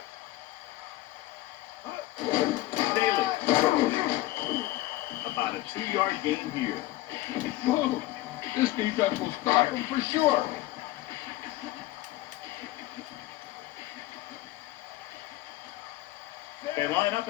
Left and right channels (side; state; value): right; quieter; 17.0 dB